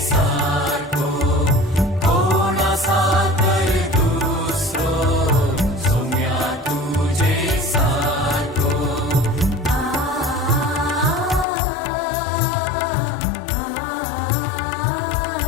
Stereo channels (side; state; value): right; drops out; at 11.5 s